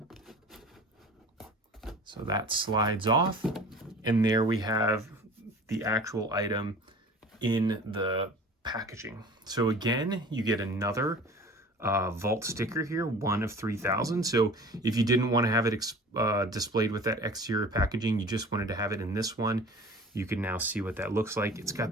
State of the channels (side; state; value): both; normal; correlation 0.42